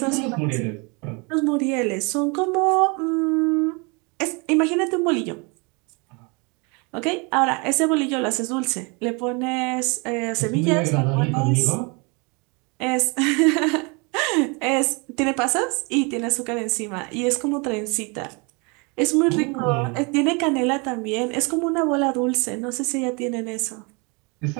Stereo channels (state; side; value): quieter; left; 30.6 dB